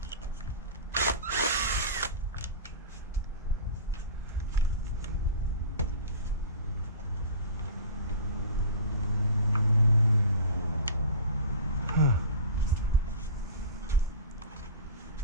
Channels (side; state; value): both; inverted; correlation -0.34